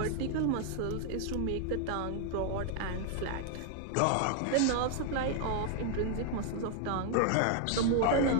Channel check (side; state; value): both; different; correlation 0.00